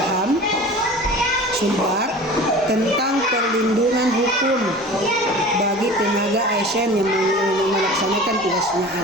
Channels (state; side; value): normal; both; correlation 0.39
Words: Sumbar tentang perlindungan hukum bagi tenaga ASN yang melaksanakan tugasnya